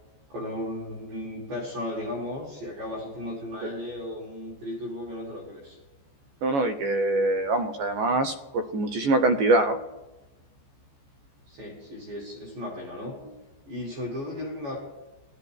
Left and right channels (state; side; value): late; left; 14 ms